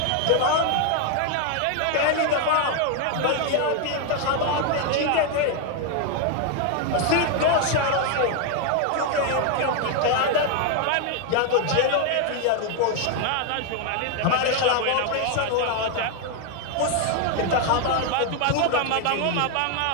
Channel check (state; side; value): different; both; correlation 0.01